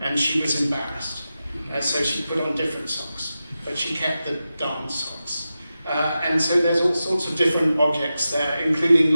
she was embarrassed. So she put on different socks, but she kept the darned socks. And so there's all sorts of different objects there, including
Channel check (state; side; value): inverted; both; correlation -0.92